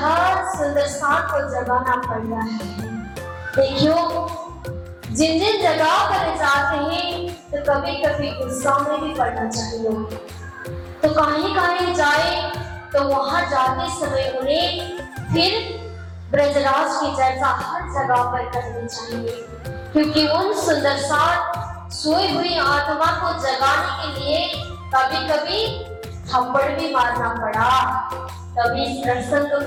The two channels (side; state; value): both; identical; correlation 1.00